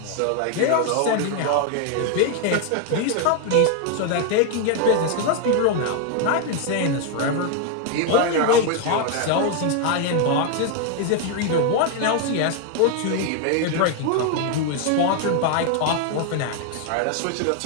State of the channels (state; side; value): different; both; correlation 0.01